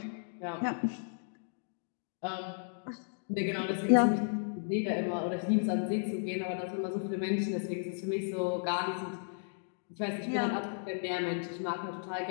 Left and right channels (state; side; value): silent; right; digital silence